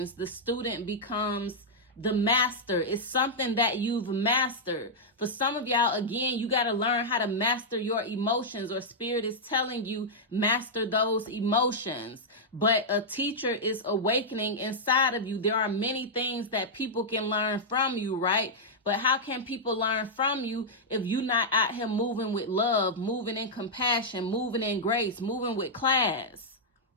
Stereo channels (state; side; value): normal; both; correlation -0.07